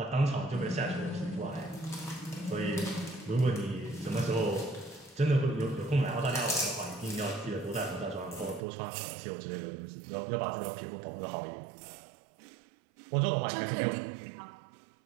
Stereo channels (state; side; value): drops out; left; at 8.7 s